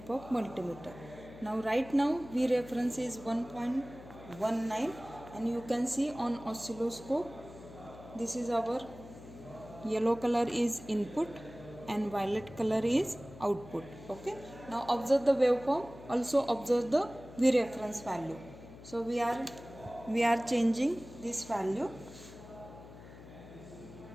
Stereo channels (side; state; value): left; noise; hum, 17 dB below the sound